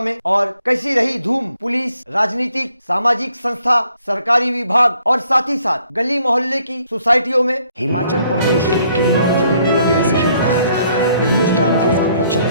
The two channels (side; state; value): both; inverted; correlation -0.67